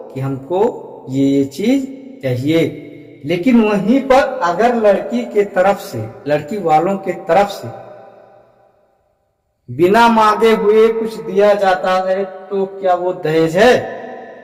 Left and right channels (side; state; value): both; identical; correlation 1.00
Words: कि हमको ये चीज चाहिए, लेकिन वहीं पर अगर लड़की के तरफ से, लड़की वालों के तरफ से बिना मांगे हुए कुछ दिया जाता है तो क्या वो दहेज है?